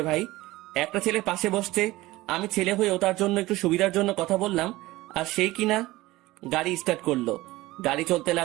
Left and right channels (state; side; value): quieter; left; 18.5 dB